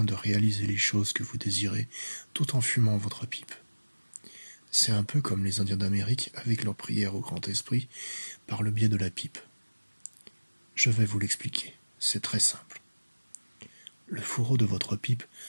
de réaliser les choses que vous désirez tout en fumant votre pipe. C'est un peu comme les Indiens d'Amérique avec leur prière au Grand Esprit par le biais de la pipe. Je vais vous l'expliquer, c'est très simple. Le fourreau de votre pipe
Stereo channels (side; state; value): both; inverted; correlation -1.00